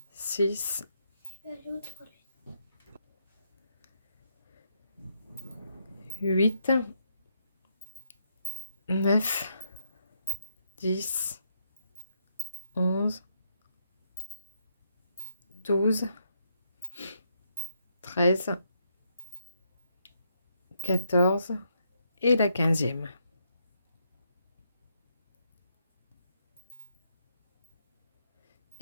6, 8, 9, 10, 11, 12, 13, 14 et la 15e.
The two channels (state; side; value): inverted; both; correlation -0.77